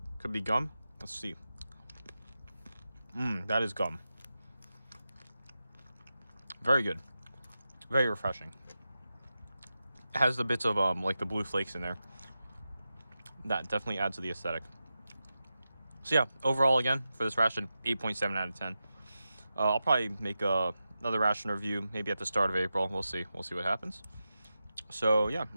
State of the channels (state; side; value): inverted; both; correlation -0.91